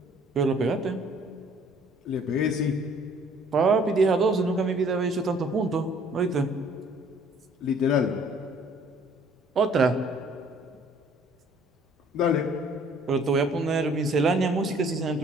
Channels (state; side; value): normal; both; correlation 0.57